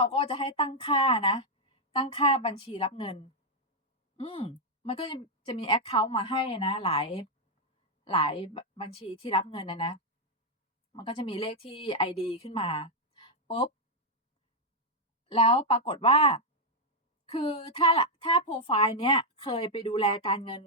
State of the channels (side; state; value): both; normal; correlation -0.02